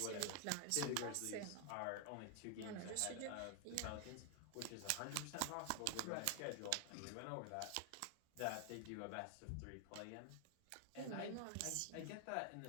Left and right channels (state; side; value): different; both; correlation 0.00